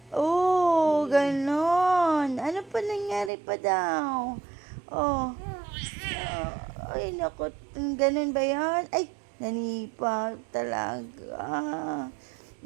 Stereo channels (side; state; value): left; drops out; at 3.3 s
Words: Oh, ganon. Ano pa nangyari pa daw? Oh. Ay, naku. Ganon ba yan? Ay, nanipa talaga.